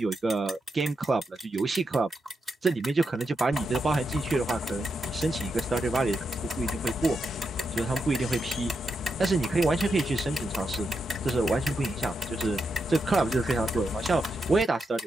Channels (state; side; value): normal; both; correlation 0.84